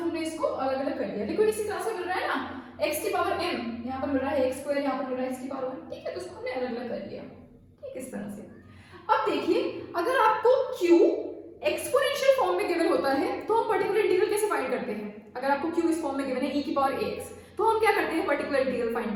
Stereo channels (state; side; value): identical; both; correlation 1.00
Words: इसको अलग अलग कर लिया. देखो इसी तरह से मिल रहा है ना, x की पावर m, यहाँ पर मिल रहा है x², यहाँ पर मिल रहा है x की पावर 1. ठीक है, तो इसको हमने अलग अलग कर लिया. ठीक, इस तरह से. अब देखिए अगर आपको q एक्सपोनेंशियल फॉर्म में गिवन होता है तो हम पर्टिकुलर इंटीग्रल कैसे फाइंड करते हैं. अगर आपको q इस फॉर्म में गिवन है e की पावर ax, तो हम क्या करते हैं पर्टिकुलर इंटीग्रल